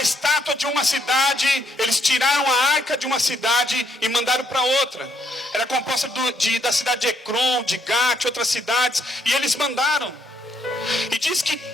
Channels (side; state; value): both; normal; correlation 0.73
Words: estátua de uma cidade, eles tiraram a arca de uma cidade e mandaram para outra. Era composta da cidade de Ecrom, de Gate, outras cidades, e eles mandaram. E diz que